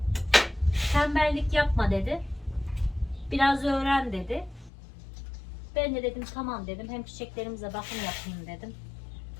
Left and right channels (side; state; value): right; drops out; at 4.7 s